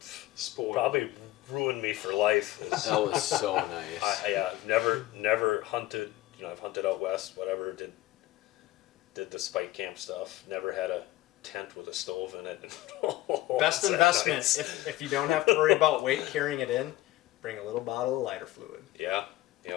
Spoiled. probably ruined me for life. That was so nice. I've never hunted. I've hunted out west. Whatever. Did the spike camp stuff. Never had a tent with a stove in it. Best Was that investment. nice? If you don't have to worry about weight carrying it in, bring a little bottle of lighter fluid. Yeah.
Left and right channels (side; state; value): right; quieter; 16.4 dB